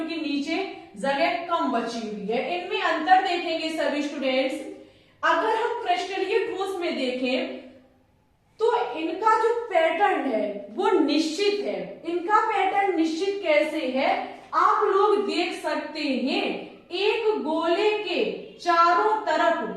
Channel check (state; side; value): identical; both; correlation 1.00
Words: नीचे जगह कम बची हुई है। इनमें अंतर देखेंगे सभी स्टूडेंट्स। अगर हम क्रिस्टलीय ठोस में देखें तो इनका जो पैटर्न है वो निश्चित है। इनका पैटर्न निश्चित कैसे है, आप लोग देख सकते हैं। एक गोले के चारों